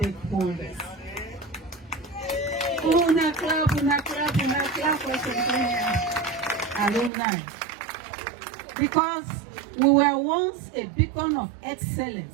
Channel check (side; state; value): left; drops out; at 7.1 s